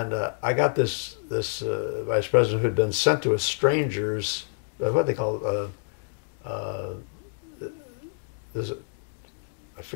got this vice president who had been sent to a stranger's, what they call, I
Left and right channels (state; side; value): silent; right; digital silence